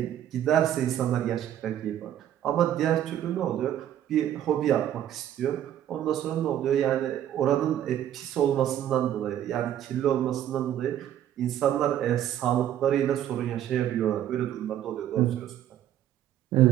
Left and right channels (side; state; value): left; quieter; 11.2 dB